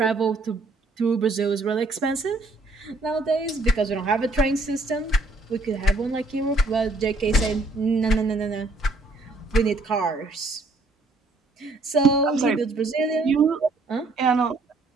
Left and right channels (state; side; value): quieter; left; 3.1 dB